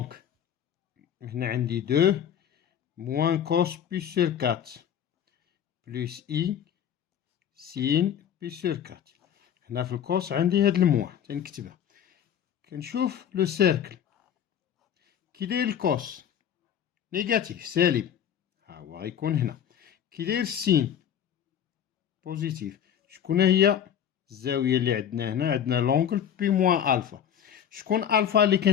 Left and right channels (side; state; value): right; quieter; 9.2 dB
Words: هنا عندي 2 موان كوس بي سور 4 بلس اي سين بي سور 4. هنا في الكوس عندي هاد الموان تنكتبها. كنشوف لو سيركل كي داير الكوس نيجاتيف سالب ها هو غيكون هنا. كي داير السين بوزيتيف شكون هي الزاوية اللي عندنا هنا؟ عندنا لونغل بي موان ألفا. شكون ألفا اللي